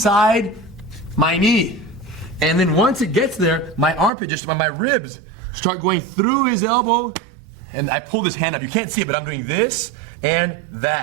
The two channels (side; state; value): left; drops out; at 4.1 s